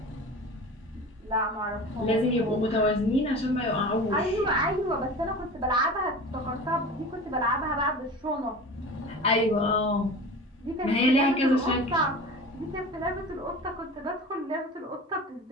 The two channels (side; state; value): both; normal; correlation 0.35